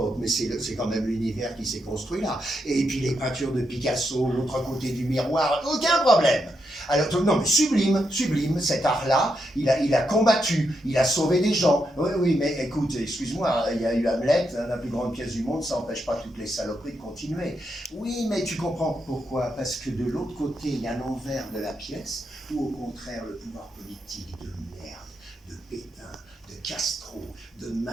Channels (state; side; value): normal; both; correlation 0.82